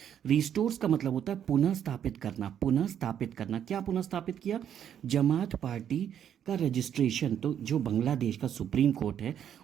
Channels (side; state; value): left; quieter; 9.4 dB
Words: का मतलब होता है पुनः स्थापित करना, पुनः स्थापित करना। क्या पुनः स्थापित किया? जमात पार्टी का रजिस्ट्रेशन। तो जो बांग्लादेश का सुप्रीम कोर्ट है